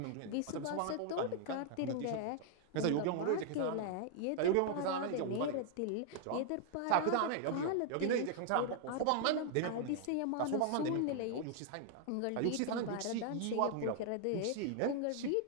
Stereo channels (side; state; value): both; different; correlation -0.01